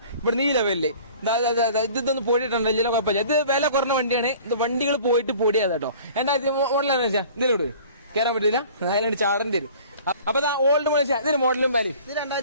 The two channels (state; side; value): inverted; both; correlation -0.47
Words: ഇവിടെ ഈ ലെവലില് ഇതൊന്ന് പോയിട്ടുണ്ടല്ലോ. ഇതിലെ കുഴപ്പമില്ല. ഇത് വില കുറഞ്ഞ വണ്ടിയാണ്. ഇത് വണ്ടികൾ പോയിട്ട് പൊടിയാ കേട്ടോ. എന്താ മോഡലാണ് വെച്ചാൽ ഇതിലോട്ട് കയറാൻ പറ്റില്ല. അതിലാണ് ചാടേണ്ടി വരും. അപ്പൊ ഓൾഡ് മോഡൽ ഇതിന് മോഡലും പേര്